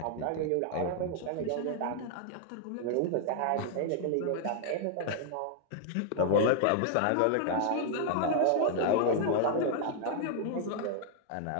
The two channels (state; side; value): different; both; correlation 0.00